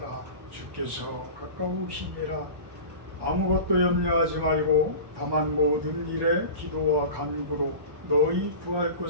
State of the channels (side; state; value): left; late; 1.1 ms